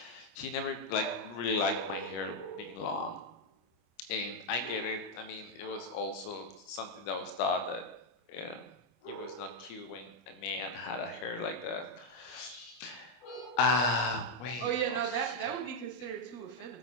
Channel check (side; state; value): right; late; 25 ms